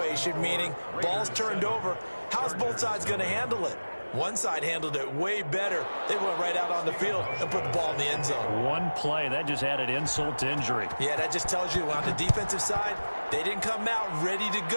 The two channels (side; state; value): both; inverted; correlation -1.00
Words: meaning ball's turned over. How's both sides going to handle it? One side handled it way better. They went right out on the field and put the ball in the end zone. One play, that just added insult to injury. Yeah, that just tells you on the defensive side, they didn't come out ready to